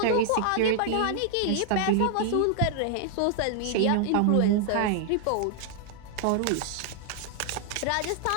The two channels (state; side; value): different; both; correlation 0.00